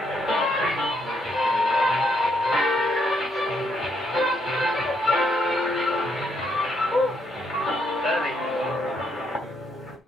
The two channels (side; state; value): both; normal; correlation 0.75